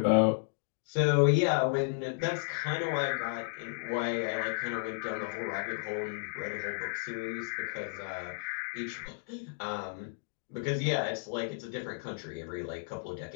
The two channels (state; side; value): silent; right; digital silence